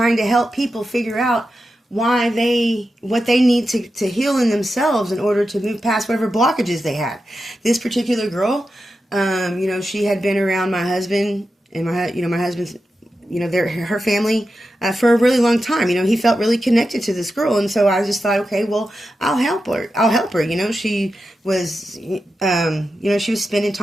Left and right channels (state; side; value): normal; both; correlation 0.90